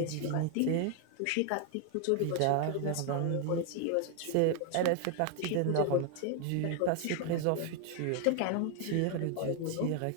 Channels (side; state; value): both; different; correlation 0.00